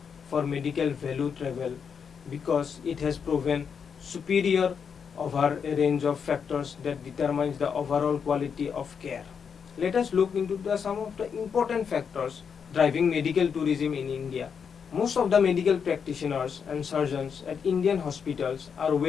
for medical value travel because it has proven superior over a range of factors that determines the overall quality of care. Let us look into some of the important factors driving medical tourism in India. Most of the medical practitioners and surgeons at Indian hospitals are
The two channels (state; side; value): quieter; right; 6.7 dB